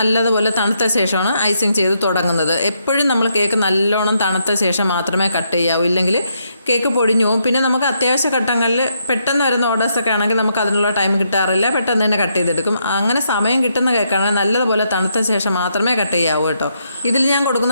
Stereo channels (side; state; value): both; inverted; correlation -0.77